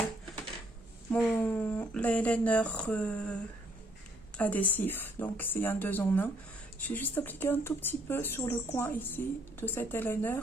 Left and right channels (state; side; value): normal; both; correlation 0.68